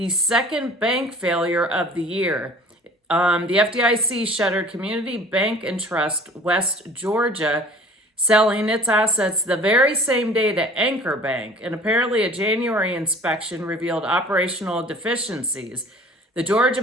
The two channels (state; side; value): normal; both; correlation 0.47